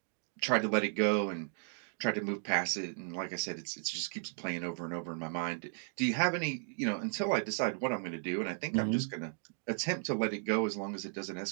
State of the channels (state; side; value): silent; left; 54 dB below the other